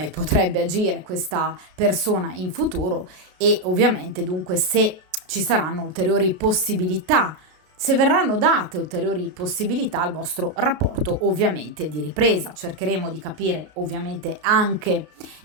potrebbe agire questa persona in futuro e ovviamente dunque se ci saranno ulteriori possibilità se verranno date ulteriori possibilità al vostro rapporto ovviamente di ripresa. Cercheremo di capire ovviamente anche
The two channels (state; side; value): late; left; 33 ms